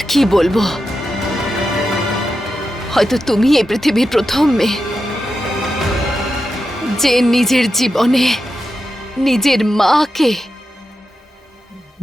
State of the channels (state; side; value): normal; both; correlation 0.89